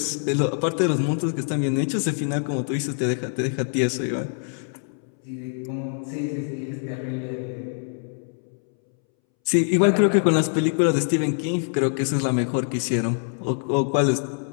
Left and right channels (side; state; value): right; silent; 62 dB below the other